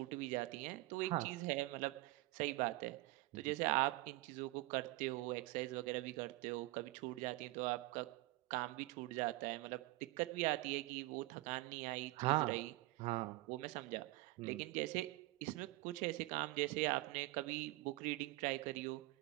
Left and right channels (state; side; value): quieter; left; 20.7 dB